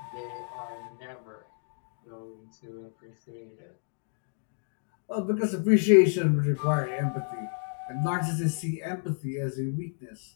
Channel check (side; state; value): right; silent; digital silence